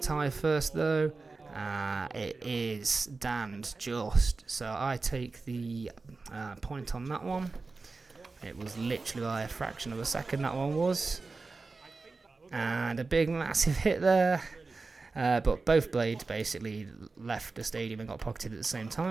tie first though? It is Dan's just. So I take the point on that one. It was literally by a fraction of a second that one was. And a big massive hit there. But both blades basically left the stadium and got pocketed at the same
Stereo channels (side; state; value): left; quieter; 3.9 dB